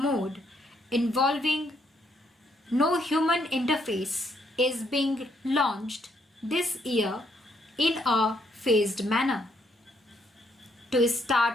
involving no human interface is being launched this year in a phased manner. To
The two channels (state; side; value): normal; both; correlation 0.73